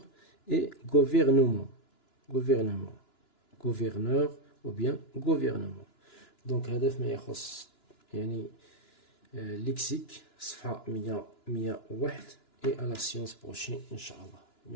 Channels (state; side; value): late; right; 2.9 ms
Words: et gouvernement gouvernement gouverneur ou bien gouvernement. دونك هذا فيما يخص يعني lexique صفحة 101 et à la séance prochaine إن شاء الله.